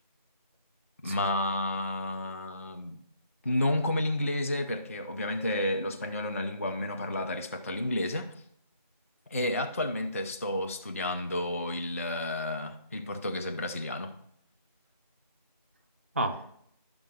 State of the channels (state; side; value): inverted; both; correlation -0.64